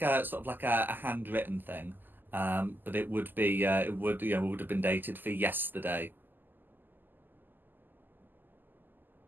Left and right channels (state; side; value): late; left; 0.090 ms